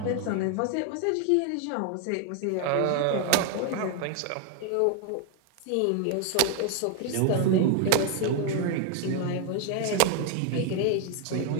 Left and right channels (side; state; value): both; different; correlation 0.00